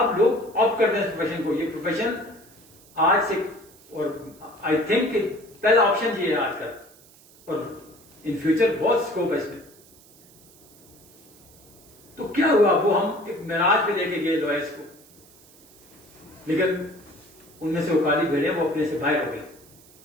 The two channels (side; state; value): right; noise; hiss, 25 dB below the sound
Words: لوگ آپٹ کرتے ہیں اس پروفیشن کو. یہ پروفیشن آج سے, اور آئی تھنک کہ پہلا آپشن یہ ہے آج کل, اور ان فیوچر بہت اسکوپ ہے اس میں. تو کیا ہوا, وہ ہم ایک معراج پہ لے کے گئے لوئرس کو, لیکن ان میں سے وہ کالی بھیڑیں وہ اپنے سے باہر ہو گئی.